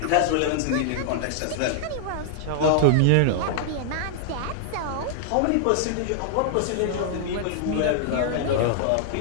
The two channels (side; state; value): both; different; correlation -0.01